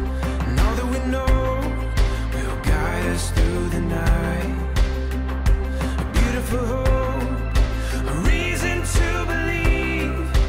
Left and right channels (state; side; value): identical; both; correlation 1.00